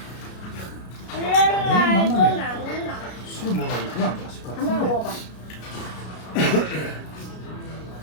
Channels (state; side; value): late; right; 33 ms